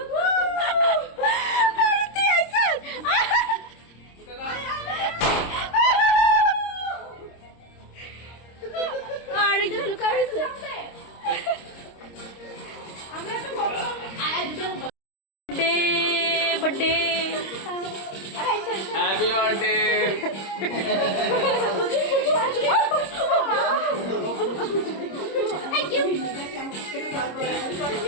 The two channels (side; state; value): right; late; 26 ms